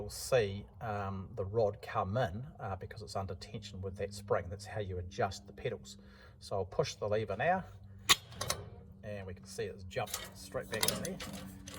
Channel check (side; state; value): both; identical; correlation 1.00